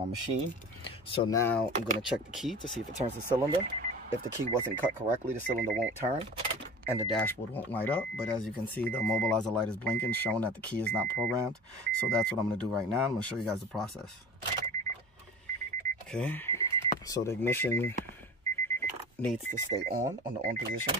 machine. So now I'm gonna check the key to see if it turns the cylinder. If the key wasn't cut correctly, the cylinder won't turn and the dashboard won't light up. But as you can see, the immobilizer light is blinking, showing that the key is not programmed. So that's what I'm gonna do right now. I'm gonna show you guys the process. Okay, so the ignition needs to stay on the on position,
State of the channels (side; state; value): both; normal; correlation 0.37